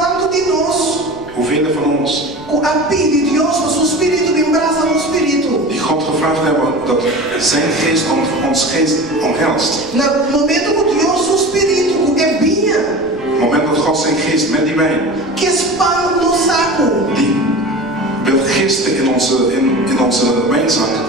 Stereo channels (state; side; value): noise; right; rumble, 25 dB below the sound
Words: de nós, Hoeveel van ons com a pedido de Deus, o seu espírito me abraça no espírito. die God gevraagd hebben dat zijn geest ons geest omhelst. No momento que Deus, o espírito, é vinha, Op het moment dat God zijn geest met die wijn, que expande no saco, die wil gisten in onze wijnzak,